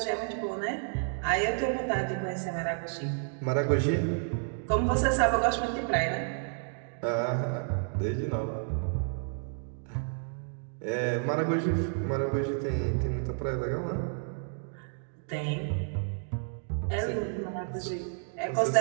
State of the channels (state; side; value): silent; left; 57 dB below the other